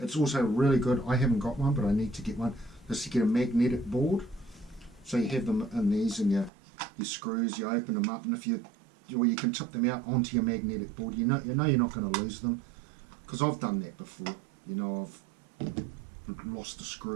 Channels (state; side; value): drops out; left; at 6.5 s